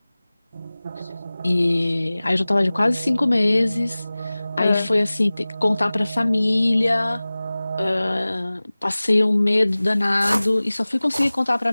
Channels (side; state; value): both; inverted; correlation -0.99